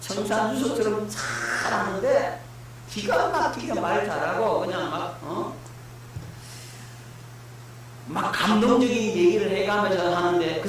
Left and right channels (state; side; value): identical; both; correlation 1.00